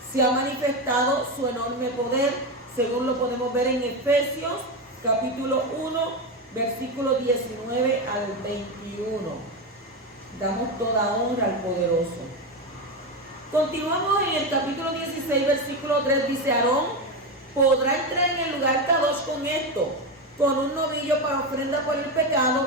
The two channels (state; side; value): normal; both; correlation 0.14